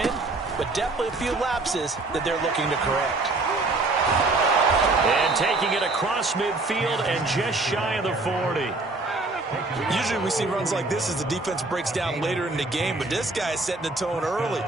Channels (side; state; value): left; quieter; 3.2 dB